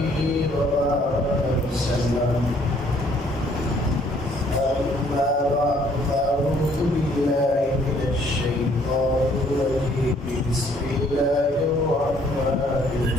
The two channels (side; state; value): both; normal; correlation 0.63